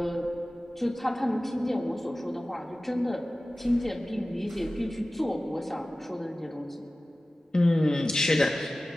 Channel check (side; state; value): both; normal; correlation 0.96